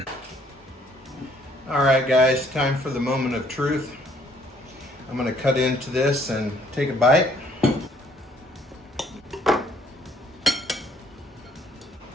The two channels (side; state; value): both; normal; correlation 0.63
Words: All right guys, time for the moment of truth. I'm gonna cut into this and take a bite.